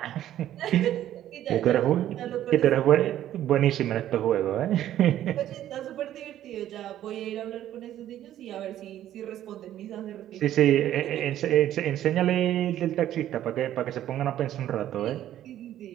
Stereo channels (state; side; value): quieter; left; 12.2 dB